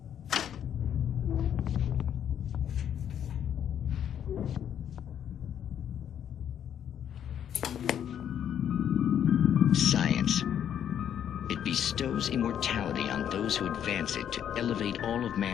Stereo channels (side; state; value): right; quieter; 9.4 dB